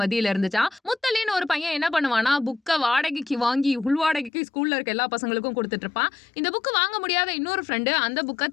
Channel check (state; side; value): drops out; right; at 4.3 s